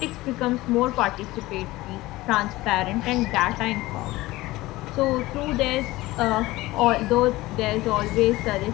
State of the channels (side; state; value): right; quieter; 18.9 dB